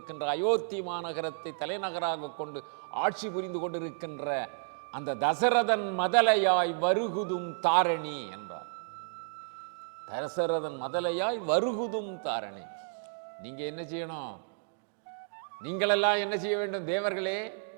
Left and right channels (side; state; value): left; silent; digital silence